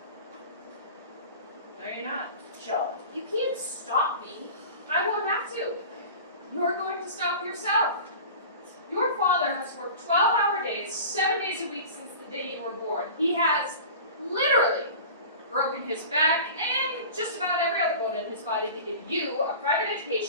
No, you're not. Joe. You can't stop me. I won't have to. You're going to stop yourself. Your father has worked 12-hour days, 7 days a week since the day you were born. He has literally broken his back and just about every other bone in his body to give you a private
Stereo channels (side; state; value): both; inverted; correlation -0.37